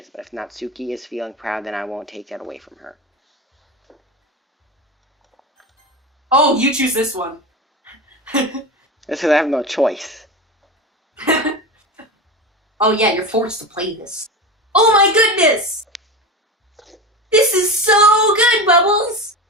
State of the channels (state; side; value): normal; both; correlation 0.24